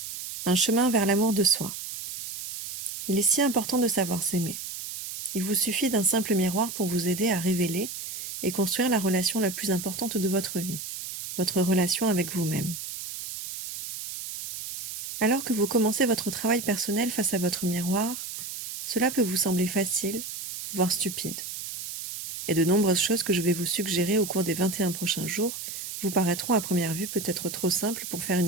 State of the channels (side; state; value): right; noise; hiss, 8 dB below the sound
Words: Un chemin vers l'amour de soi. Il est si important de savoir s'aimer. Il vous suffit d'un simple miroir pour vous aider à révéler et construire la relation la plus importante de votre vie, votre relation avec vous-même. Alors que vous commencez votre travail personnel face à votre miroir, cela peut vous sembler facile, voire stupide. Et de nombreuses choses que je vais vous suggérer au cours des 21 prochains jours vous paraîtront à première vue peut-être trop simples pour faire